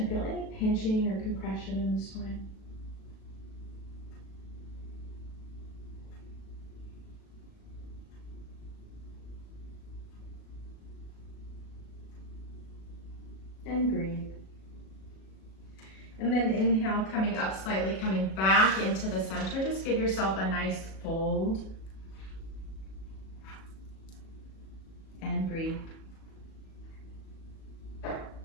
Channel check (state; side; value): late; right; 37 ms